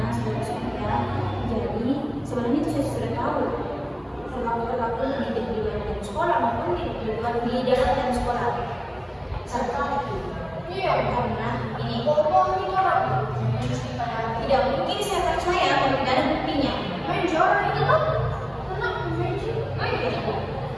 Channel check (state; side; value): identical; both; correlation 1.00